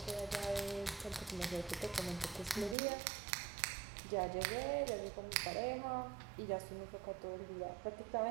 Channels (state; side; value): drops out; left; at 2.8 s